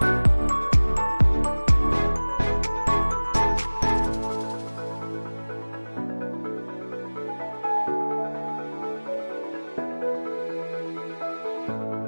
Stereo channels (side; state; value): both; inverted; correlation -1.00